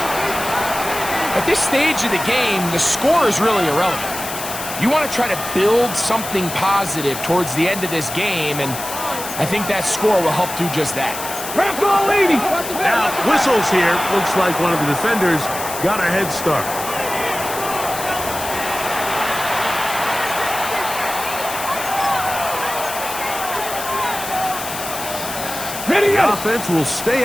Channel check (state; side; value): noise; left; hiss, 8 dB below the sound